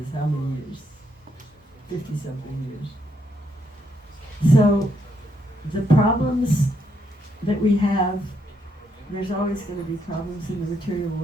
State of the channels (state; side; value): normal; both; correlation 0.76